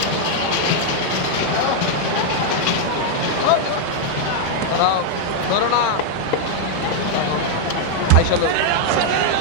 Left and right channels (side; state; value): both; different; correlation 0.00